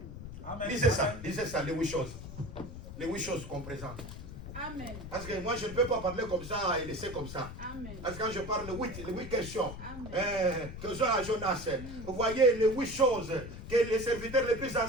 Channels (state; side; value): noise; left; rumble, 11 dB below the sound